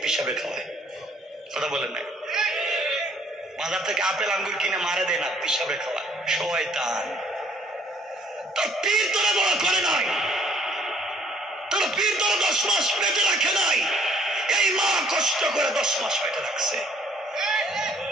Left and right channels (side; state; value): both; normal; correlation 0.61